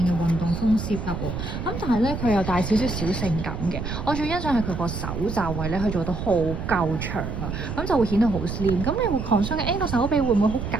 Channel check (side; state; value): right; noise; rumble, 5 dB below the sound